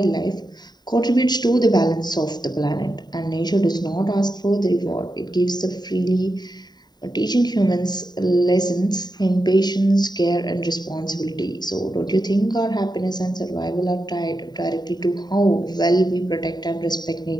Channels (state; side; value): late; right; 0.20 ms